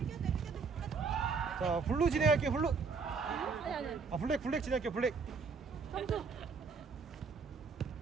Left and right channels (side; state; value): left; quieter; 4.9 dB